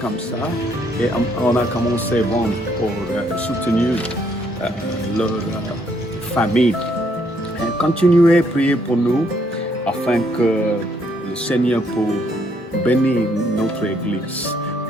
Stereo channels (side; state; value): both; normal; correlation 0.70